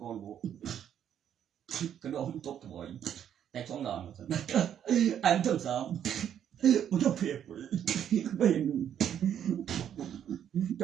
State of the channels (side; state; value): left; quieter; 9.5 dB